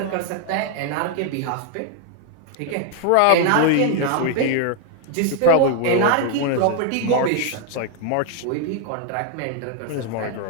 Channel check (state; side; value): different; both; correlation 0.00